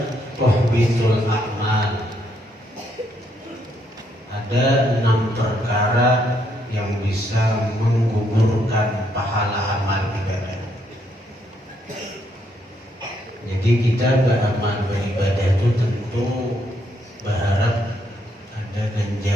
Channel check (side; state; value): both; normal; correlation 0.74